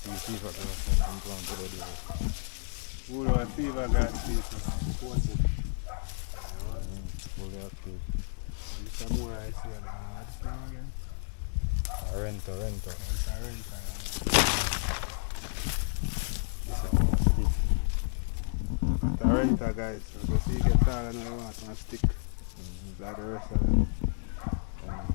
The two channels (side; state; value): right; silent; 57 dB below the other